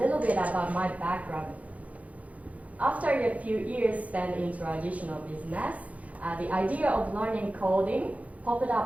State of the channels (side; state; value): left; late; 0.069 ms